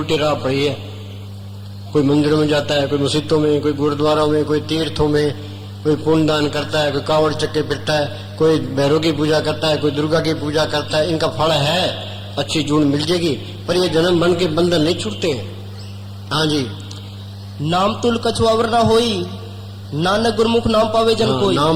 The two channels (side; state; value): both; identical; correlation 1.00